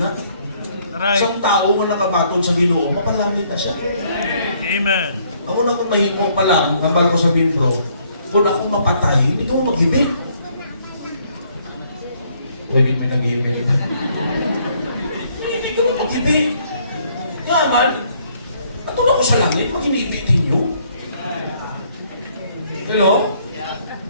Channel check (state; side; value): inverted; both; correlation -0.66